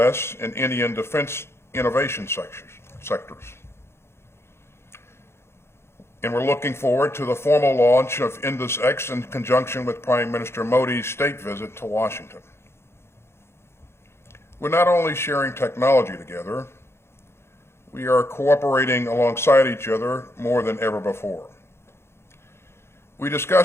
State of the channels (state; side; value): late; right; 0.12 ms